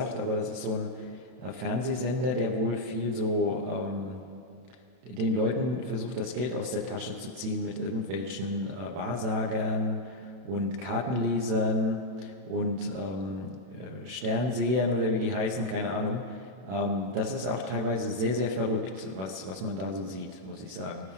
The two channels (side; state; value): left; late; 32 ms